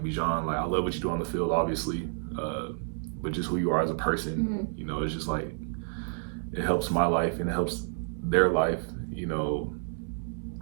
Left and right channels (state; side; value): silent; left; digital silence